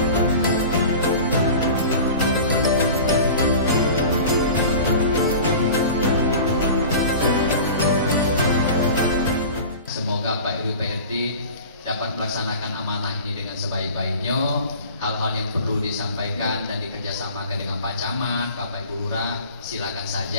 Semoga Pak RW PRT dapat melaksanakan amanah ini dengan sebaik-baiknya. Hal-hal yang perlu disampaikan dan dikerjasamakan dengan Pak Camat, Bapak Ibu Lurah, silakan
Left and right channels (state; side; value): inverted; both; correlation -0.38